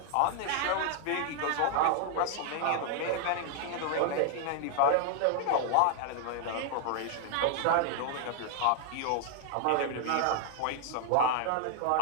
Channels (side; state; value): both; different; correlation 0.00